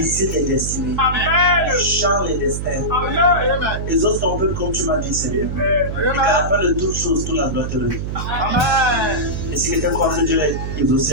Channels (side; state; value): right; noise; hum, 4 dB below the sound